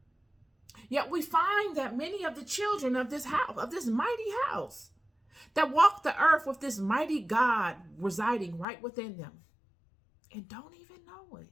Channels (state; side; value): drops out; right; at 8.7 s